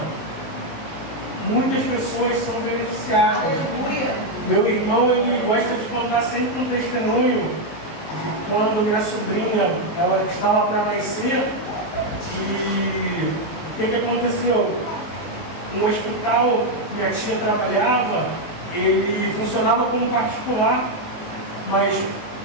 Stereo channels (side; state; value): right; late; 19 ms